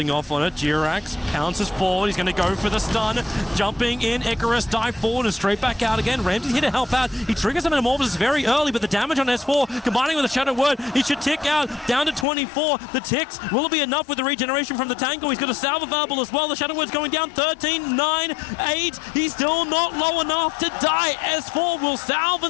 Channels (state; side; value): drops out; right; at 12.2 s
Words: off on it. Jirax pounces forward. He's going to go for the stun. Jumping in. Icarus dive forward and straight back out again. Ramsey's here to help out. He triggers some Metamorphosis very early, but the damage on S4 combining with a Shadow Word, he should tick out down to 24. The ticks, will it be enough with the regeneration from the Tango? He's got a salve available as well. The Shadow Word's going down 13, 9, 8. He's still not low enough to die. S4 will salve